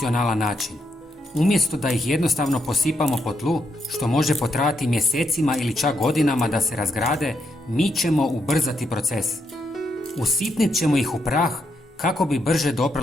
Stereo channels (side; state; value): both; normal; correlation 0.80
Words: način. Umjesto da ih jednostavno posipamo po tlu, što može potrajati mjesecima ili čak godinama da se razgrade, mi ćemo ubrzati proces. Usitnit ćemo ih u prah kako bi brže